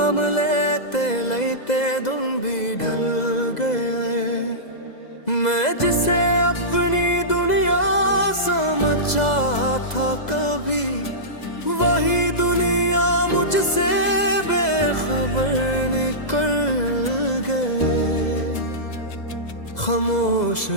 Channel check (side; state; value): right; late; 2.0 ms